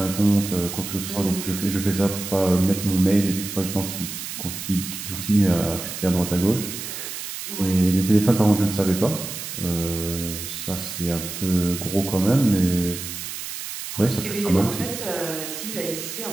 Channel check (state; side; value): noise; right; hiss, 8 dB below the sound